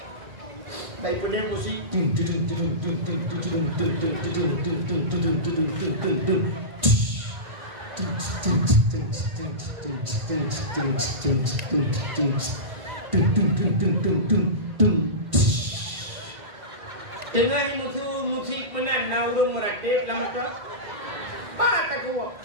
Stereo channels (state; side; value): late; left; 1.6 ms